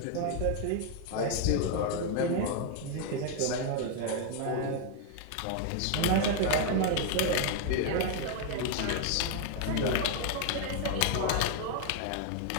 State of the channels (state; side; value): different; both; correlation 0.00